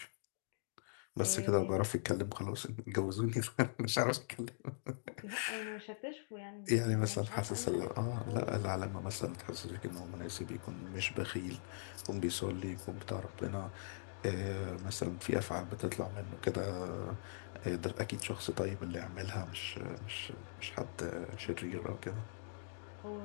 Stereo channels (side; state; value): right; silent; digital silence